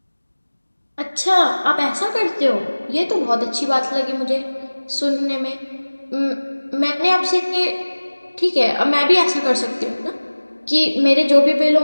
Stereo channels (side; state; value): both; inverted; correlation -1.00